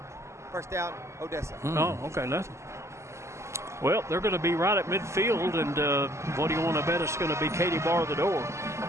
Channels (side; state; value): left; late; 0.13 ms